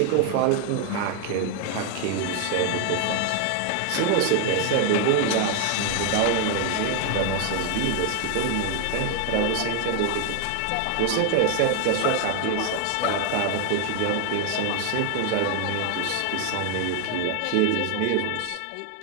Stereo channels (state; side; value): different; both; correlation 0.00